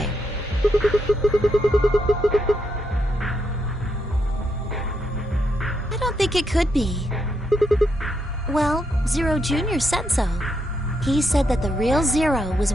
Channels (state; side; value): normal; both; correlation 0.80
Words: I don't think it could be. Well, Zero Jr. said so. He said that the real Zero was